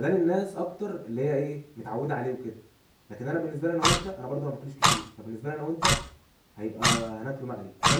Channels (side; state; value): both; identical; correlation 1.00